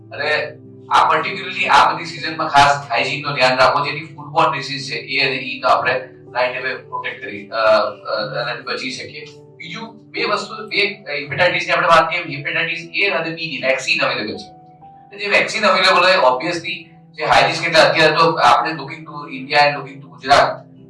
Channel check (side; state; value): both; identical; correlation 1.00